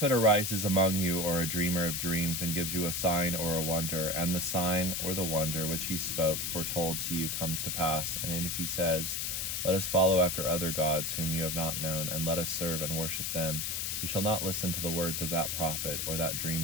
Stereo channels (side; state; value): left; noise; hiss, 1 dB below the sound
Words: arises among you, or a dreamer of dreams, and gives you a sign or a wonder, and the sign or the wonder which he spoke foretold to you comes to pass, and if he says, let us follow after other gods whom you have not known, and let us serve and worship them, you shall not listen to the words of that prophet or that